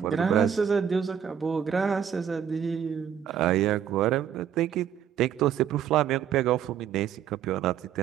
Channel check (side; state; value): left; quieter; 8.8 dB